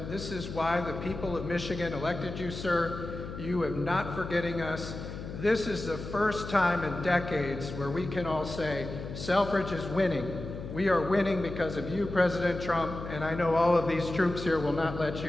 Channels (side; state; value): left; noise; hum, 9 dB below the sound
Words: This is why the people of Michigan elected you, sir. You are not forgetting us. This is the first time in decades where we can all say, Selfridge is winning. We are winning because of you, President Trump, and I know all of these troops here will not let